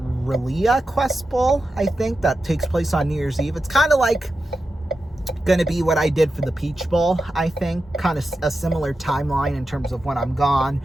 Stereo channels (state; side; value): normal; both; correlation 0.90